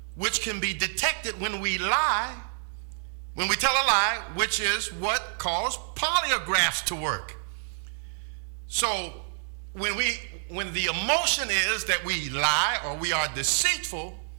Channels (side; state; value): left; silent; digital silence